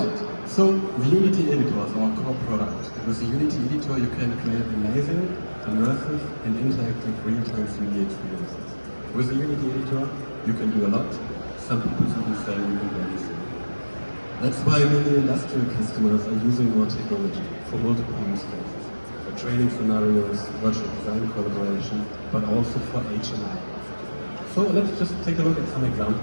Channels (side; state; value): both; inverted; correlation -1.00